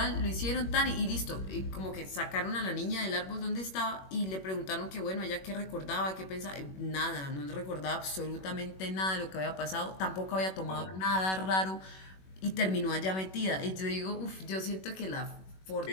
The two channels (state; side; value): late; right; 21 ms